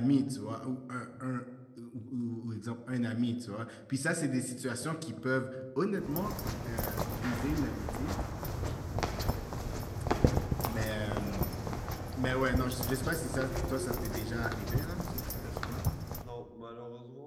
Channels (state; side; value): identical; both; correlation 1.00